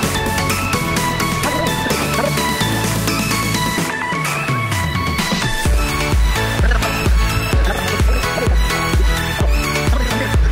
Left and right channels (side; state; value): both; identical; correlation 1.00